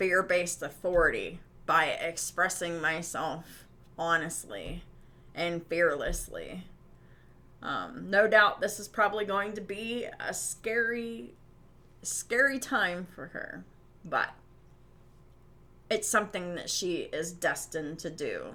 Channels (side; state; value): both; identical; correlation 1.00